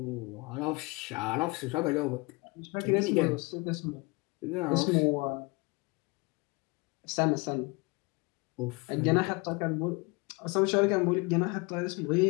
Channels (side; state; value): right; quieter; 26.9 dB